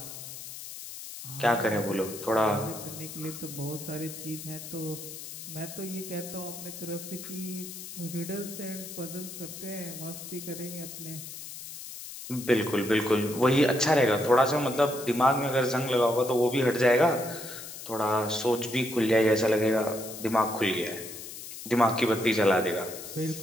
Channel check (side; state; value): left; noise; hiss, 11 dB below the sound